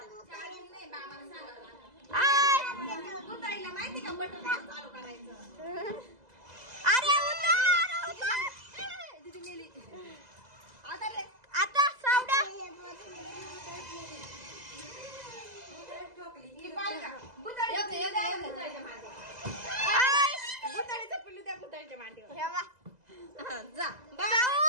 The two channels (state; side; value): late; left; 2.0 ms